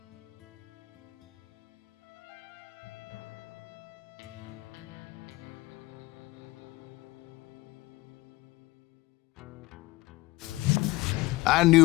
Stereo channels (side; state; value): right; quieter; 19.8 dB